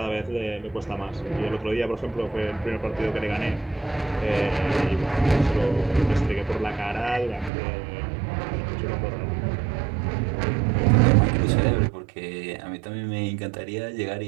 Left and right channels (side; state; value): left; drops out; at 7.5 s